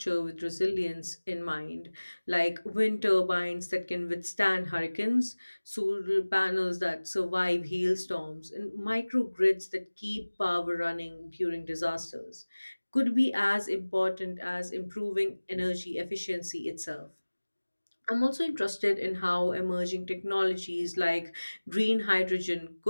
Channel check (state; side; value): inverted; both; correlation -1.00